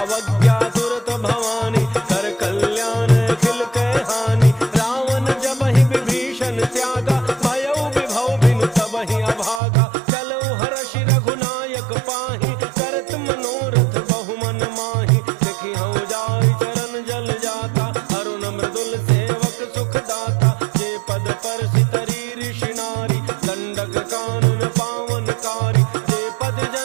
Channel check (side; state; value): left; drops out; at 9.6 s